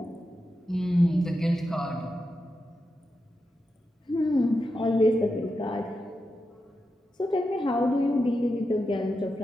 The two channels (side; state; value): both; normal; correlation 0.88